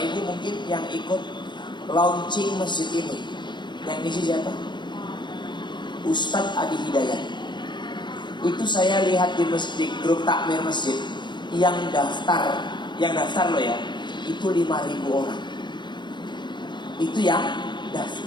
mungkin yang ikut launching masjid ini, yang isi siapa? Ustadz Adi Hidayat. Itu saya lihat di masjid, grup takmir masjid, yang daftar loh ya, itu 5.000 orang. Itu yang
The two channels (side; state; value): right; late; 0.22 ms